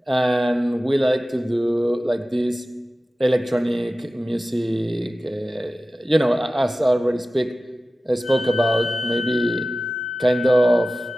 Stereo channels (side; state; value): both; normal; correlation 0.95